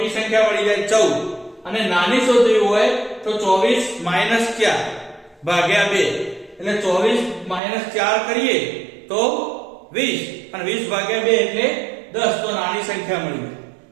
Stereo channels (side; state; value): left; drops out; at 7.6 s